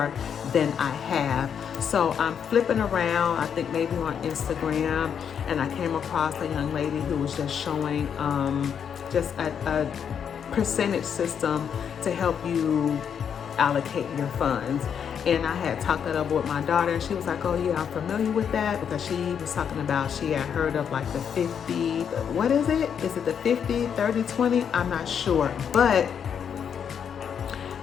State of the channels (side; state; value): right; quieter; 7.8 dB